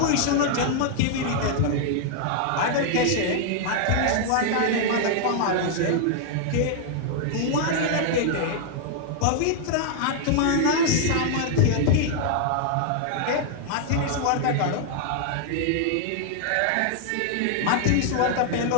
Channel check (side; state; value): both; different; correlation -0.01